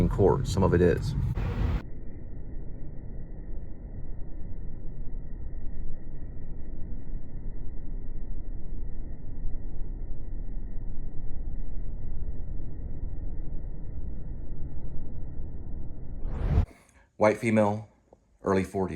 Corps. Some of it is. White female, early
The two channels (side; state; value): both; identical; correlation 1.00